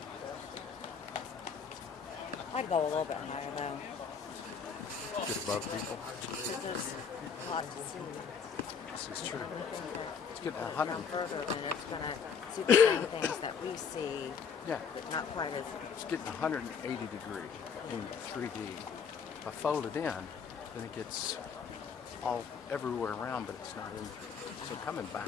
I'd go a little bit higher though. Get above people. Because it's hot to see. This is true. Let's get Come 100. further and it's gonna see the same things that we see, Yeah, but not quite as. it's getting 180 degree in 3D. If I fold it in, then it gets all everywhere around, but it's not in. So coming back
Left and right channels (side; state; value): right; quieter; 6.4 dB